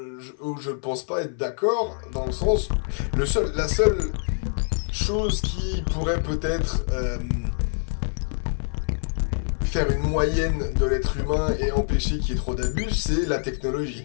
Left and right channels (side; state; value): right; silent; 57 dB below the other